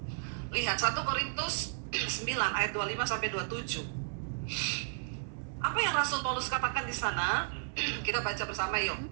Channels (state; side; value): silent; left; digital silence